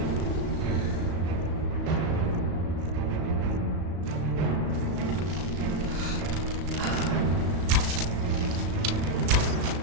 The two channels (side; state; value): left; late; 35 ms